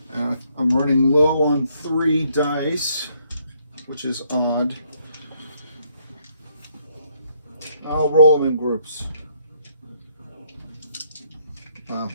I'm running low on 3 dice, which is odd. I'll roll them in groups.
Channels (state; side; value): inverted; both; correlation -0.70